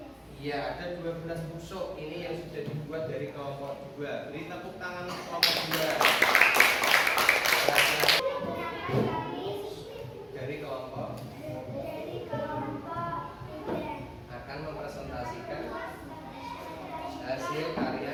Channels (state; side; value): identical; both; correlation 1.00